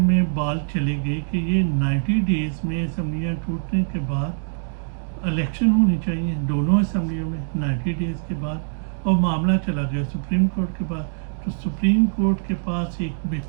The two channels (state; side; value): silent; left; digital silence